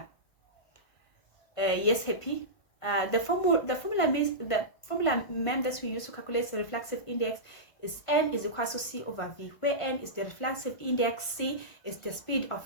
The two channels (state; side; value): late; right; 1.5 ms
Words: Yes, happy. The formula mem that we use to calculate the reflexive index is N is equal to C over V, where N is the reflexive index, C is the speed